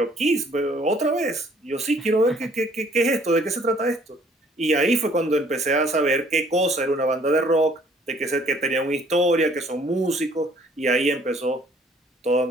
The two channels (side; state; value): both; normal; correlation 0.59